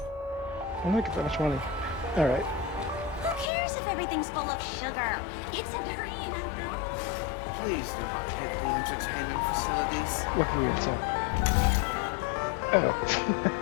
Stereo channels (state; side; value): drops out; right; at 3.5 s